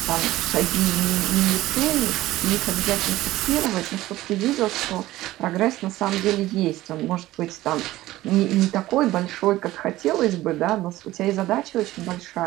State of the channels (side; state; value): left; quieter; 16.4 dB